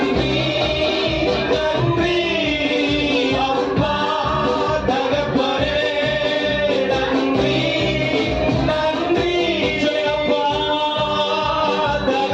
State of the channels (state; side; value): identical; both; correlation 1.00